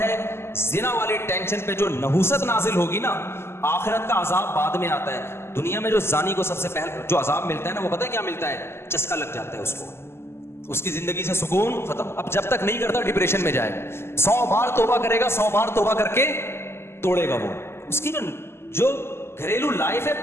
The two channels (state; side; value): late; right; 0.12 ms